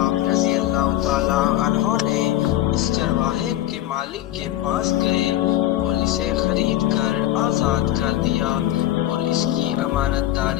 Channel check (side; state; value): right; quieter; 13.7 dB